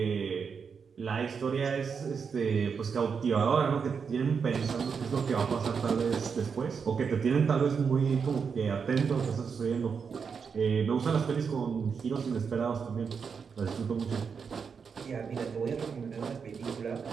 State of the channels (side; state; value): left; quieter; 6.0 dB